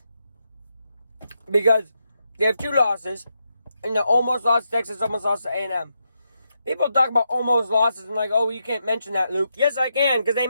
Because they have 2 losses. And they almost lost to Texas, almost lost to A&M. People talk about almost losses and like, oh, you can't mention that, Luke. Yes, I can, because they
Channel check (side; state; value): both; inverted; correlation -0.83